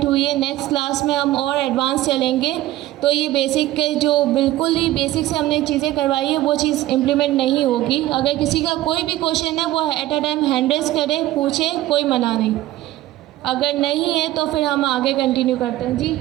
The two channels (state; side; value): quieter; left; 15.5 dB